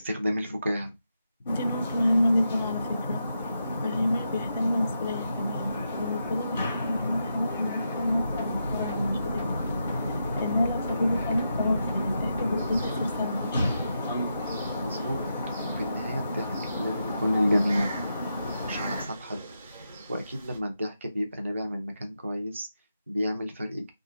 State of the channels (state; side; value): inverted; both; correlation -0.85